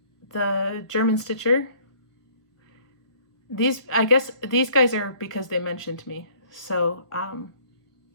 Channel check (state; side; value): late; right; 1.4 ms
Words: the German Stitcher, I guess these guys are because they mentioned me. So